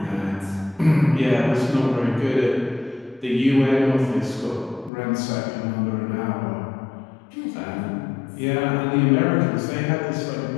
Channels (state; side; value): drops out; right; at 4.9 s